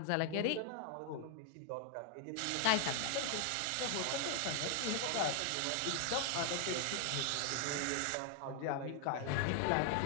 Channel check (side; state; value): both; different; correlation 0.00